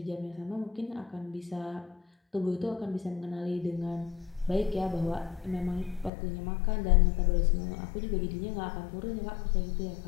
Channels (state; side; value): drops out; right; at 6.1 s